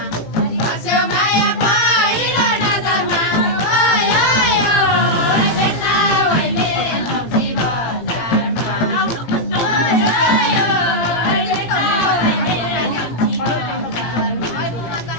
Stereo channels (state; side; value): late; right; 18 ms